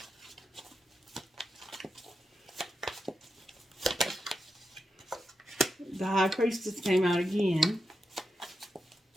The High Priestess came out again.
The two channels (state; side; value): normal; both; correlation 0.88